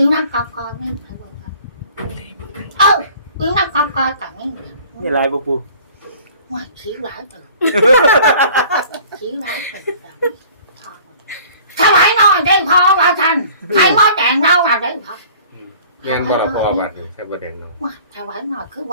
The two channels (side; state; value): both; inverted; correlation -0.49